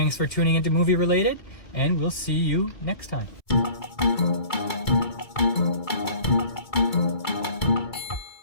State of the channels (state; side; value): late; right; 2.3 ms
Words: for tuning into Movie Related, and we'll see you next time.